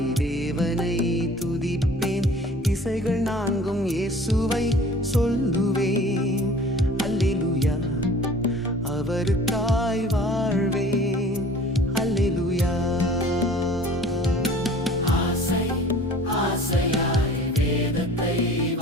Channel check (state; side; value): normal; both; correlation 0.47